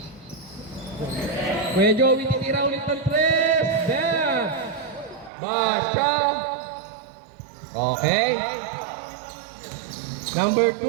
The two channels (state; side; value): drops out; left; at 5.3 s